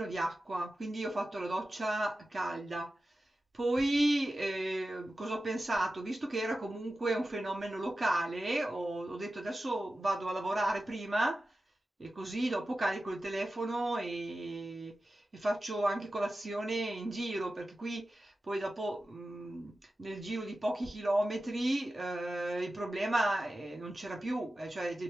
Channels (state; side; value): normal; both; correlation 0.94